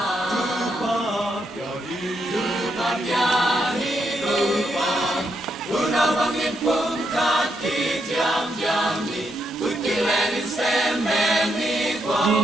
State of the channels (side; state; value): both; normal; correlation 0.80